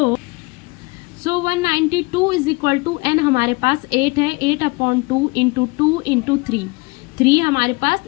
192 इज इक्वल टू एन हमारे पास 8 है, 8 अपॉन 2 इंटू 2 इंटू 3, 3 हमारे पास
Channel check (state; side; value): quieter; right; 26.3 dB